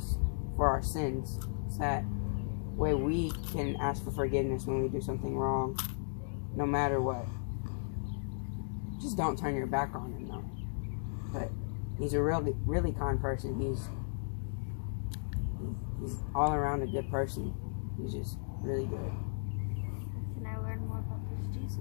for our sins, so that way we can ask for forgiveness when we do something wrong, no matter what. Just don't turn your back on him, though. But he's a really, really kind person. He's all around a good person. He's just really good. Can I learn more about this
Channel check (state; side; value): silent; right; digital silence